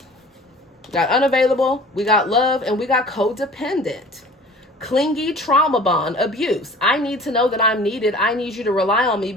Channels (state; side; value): normal; both; correlation 0.45